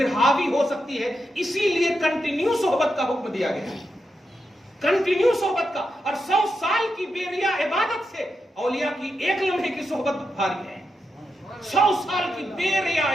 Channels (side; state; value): both; normal; correlation 0.86